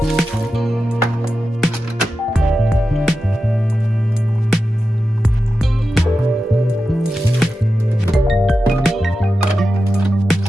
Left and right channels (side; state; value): both; normal; correlation 0.91